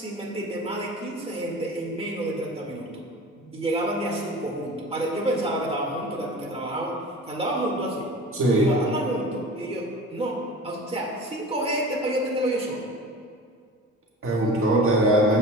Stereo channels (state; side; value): normal; both; correlation 0.37